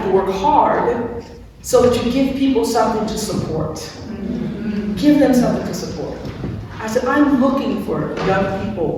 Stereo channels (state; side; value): identical; both; correlation 1.00